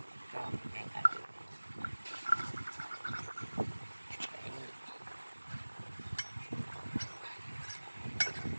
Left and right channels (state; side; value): inverted; both; correlation -1.00